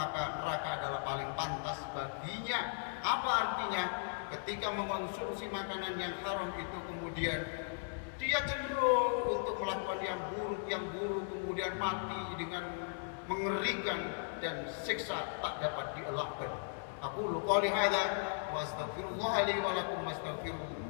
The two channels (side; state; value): right; silent; digital silence